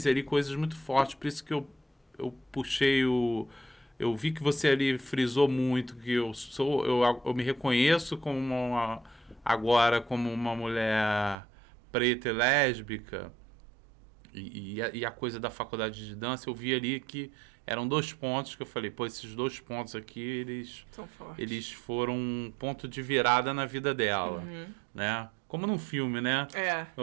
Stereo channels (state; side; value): drops out; left; at 11.4 s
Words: ali coisas muito fortes, por isso que eu puxei o... Eu vi que você ali frisou muito que eu me reconheço agora como uma mulher preta e lésbica, e a coisa da faculdade de dança, eu vi ali que eram 2 pontos que eu falei, pô, esses 2 pontos aqui, eles foram um ponto de virada na vida dela, né? Como num filme, né?